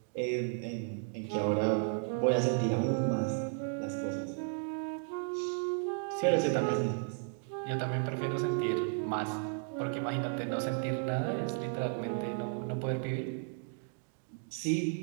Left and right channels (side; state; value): left; silent; 55 dB below the other